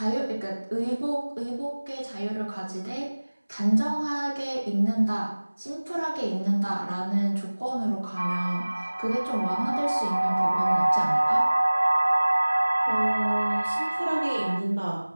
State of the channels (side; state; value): both; inverted; correlation -1.00